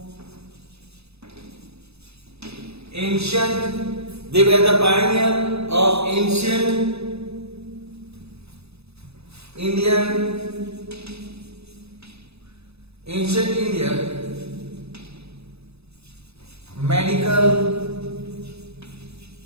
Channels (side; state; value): left; late; 0.79 ms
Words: ancient, they were the pioneer of ancient India medical